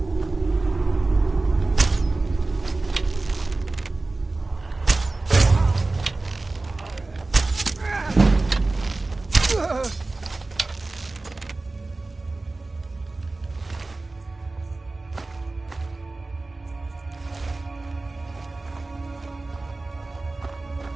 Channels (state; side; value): quieter; left; 3.3 dB